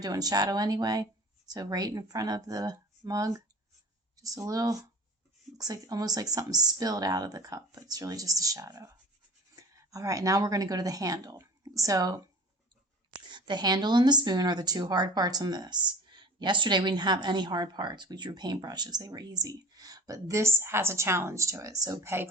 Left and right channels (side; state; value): both; normal; correlation 0.42